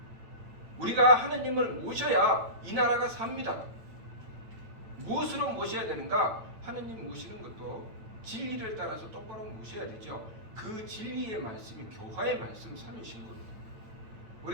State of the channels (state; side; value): late; left; 8.9 ms